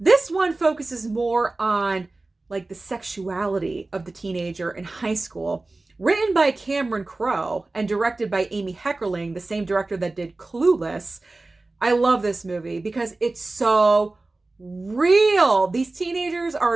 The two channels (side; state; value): left; quieter; 3.2 dB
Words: one focuses more on like the sexuality of the teenager in high school. Written by Cameron Crowe and directed by Amy Heckerling, the same director that did Clueless. I love this movie because it's so real. These teenagers are